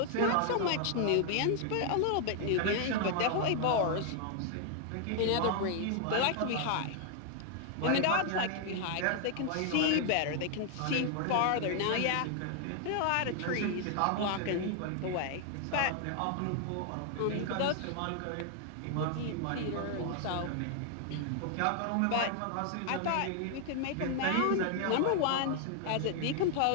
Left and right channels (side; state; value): both; different; correlation 0.00